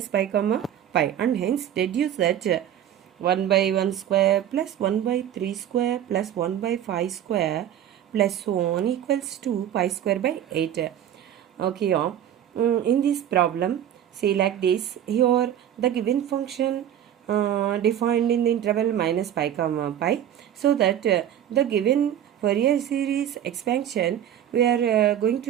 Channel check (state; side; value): quieter; left; 10.5 dB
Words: pi comma pi, and hence deduce that 1 by 1 square plus 1 by 3 square plus 1 by 5 square plus so on equals to pi square by 8. Okay, in this problem, see like this, here the given function defined in the interval minus pi comma pi, so that the given Fourier series expansion, we are going